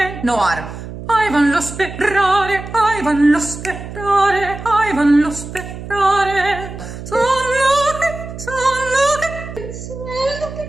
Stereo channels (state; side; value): noise; right; hum, 11 dB below the sound